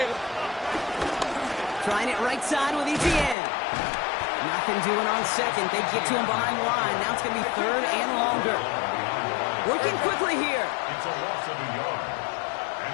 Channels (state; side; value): drops out; right; at 3.4 s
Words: Trying it right side with Etienne. Nothing doing on second. They get to him behind the line. Now it's going to be 3rd and longer. Working quickly here. It's a loss of a yard.